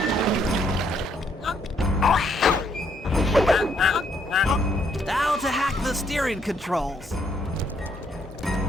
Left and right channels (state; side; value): normal; both; correlation 0.71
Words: Now to hack the steering controls.